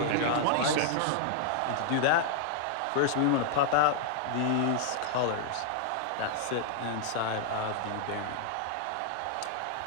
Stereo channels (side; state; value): both; different; correlation -0.01